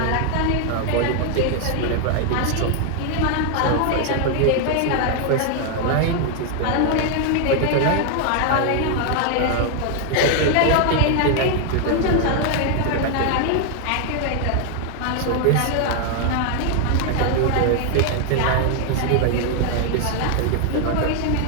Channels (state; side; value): different; both; correlation 0.00